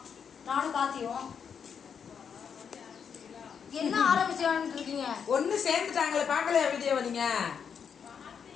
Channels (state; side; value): quieter; right; 7.0 dB